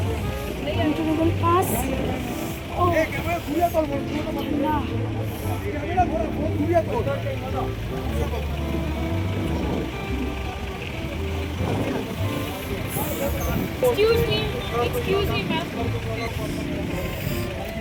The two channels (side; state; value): both; identical; correlation 1.00